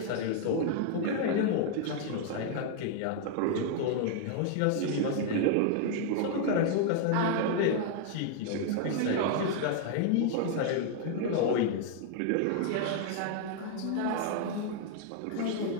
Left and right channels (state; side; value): different; both; correlation 0.00